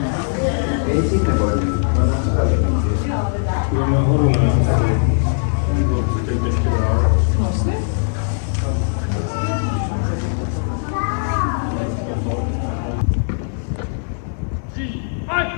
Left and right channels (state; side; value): silent; right; digital silence